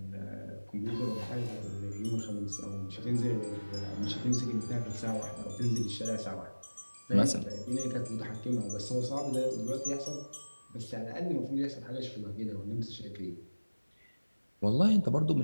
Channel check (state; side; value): inverted; both; correlation -1.00